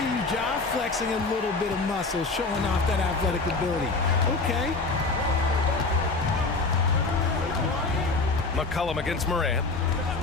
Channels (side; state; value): right; quieter; 3.7 dB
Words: you, Ja, flexing a little bit of muscle, showing off that athletic ability. Okay. McCollum against Morant.